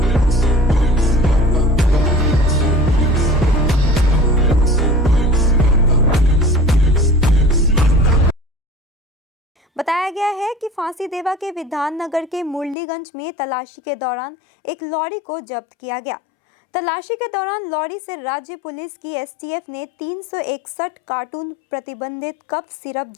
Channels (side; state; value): right; drops out; at 12.8 s